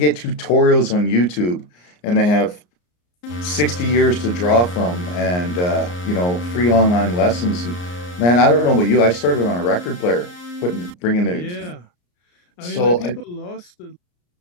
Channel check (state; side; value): late; right; 34 ms